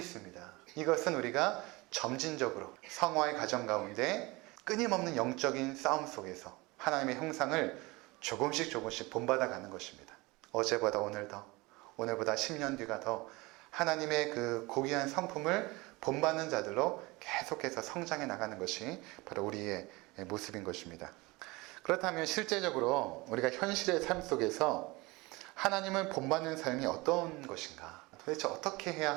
이것은 우리가 점진적으로 성화의 과정 가운데 끊임없는 영적인 싸움 속에서 하나님의 형상을 조금씩 본받아 가는 것입니다. 어제보다 오늘 더, 오늘보다 10년 뒤가 더 하나님의 그 고귀한 성품을 본받는 자들로 계속해서 성장해 나가는 것이 바로 우리의 모습인 것입니다. 그렇다면 실제적으로 우리가 현실의 삶 속에서 하나님을 본받는 삶이 어떤 것인가? 도대체 어떻게 해야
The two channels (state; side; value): quieter; left; 23.3 dB